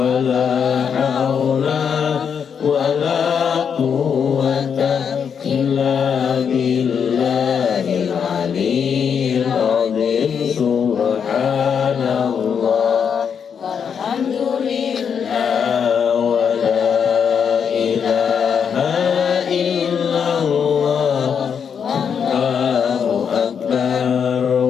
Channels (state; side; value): quieter; right; 7.1 dB